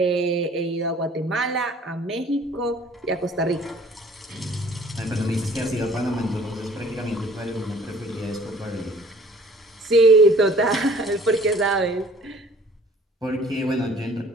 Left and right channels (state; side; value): normal; both; correlation 0.53